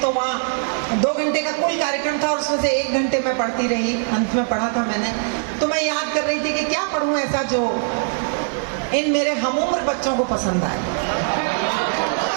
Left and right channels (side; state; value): left; silent; digital silence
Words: तो वहाँ 2 घंटे का कुल कार्यक्रम था और उसमें से 1 घंटे मैं पढ़ती रही, अंत में पढ़ा था मैंने। तो मैं याद कर रही थी कि क्या पढ़ूं ऐसा जो इन मेरे हमउम्र बच्चों को पसंद आए।